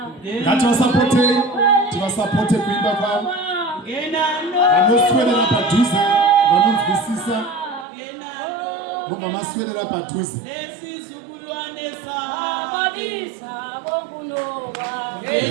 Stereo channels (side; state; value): left; drops out; at 7.9 s